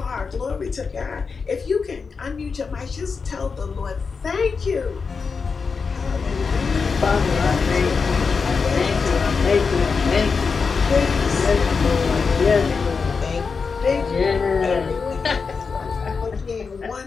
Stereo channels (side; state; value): right; quieter; 5.1 dB